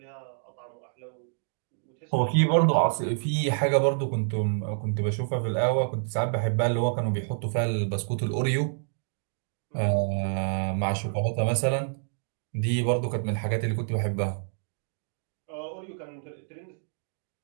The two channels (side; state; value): left; silent; digital silence